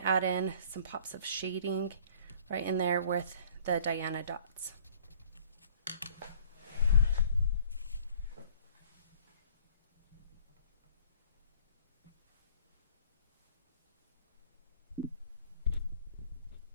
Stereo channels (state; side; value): inverted; both; correlation -0.53